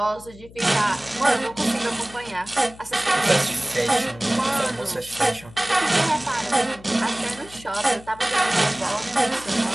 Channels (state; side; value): noise; left; hum, 20 dB below the sound